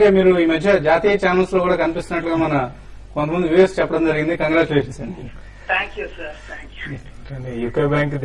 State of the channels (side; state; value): both; identical; correlation 1.00